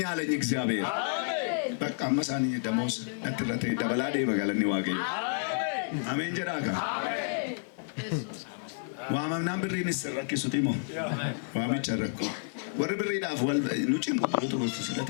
አለኝ እግዚአብሔር በቃ መሳኒ ደሞዝ ነጥረቴ ደበላዴ በጋለኒ ዋገኝ አሜን ጀራካ አሜን ኢየሱስ ዋማምናም ብሪን ሰረክ ሱቲሞ ዋሚ ቸረኮ ወር ብሪ ዳፍ ወል ኑጭን ቁጥሩ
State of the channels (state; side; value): silent; right; 58 dB below the other